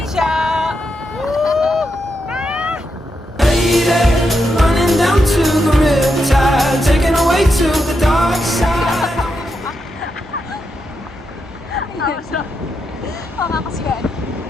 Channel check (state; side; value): normal; both; correlation 0.84